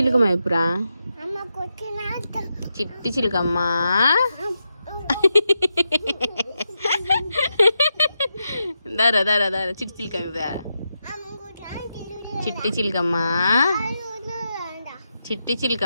చెప్పురా. అమ్మ కొట్టిన చిట్టి చిలుకమ్మ దారా దారా దారా చిట్టి చిలుకమ్మ చెప్పురా. చిట్టి చిలుకమ్మ చిట్టి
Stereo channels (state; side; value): inverted; both; correlation -0.86